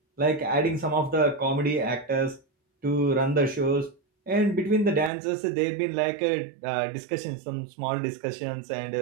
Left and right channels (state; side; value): drops out; left; at 5.1 s